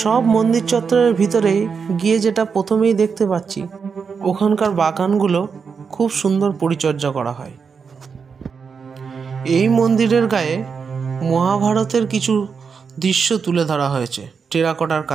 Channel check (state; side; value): quieter; left; 5.8 dB